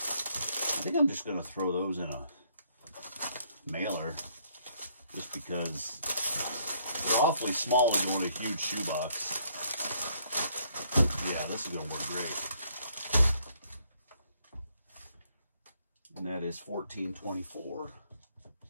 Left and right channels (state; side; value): inverted; both; correlation -0.68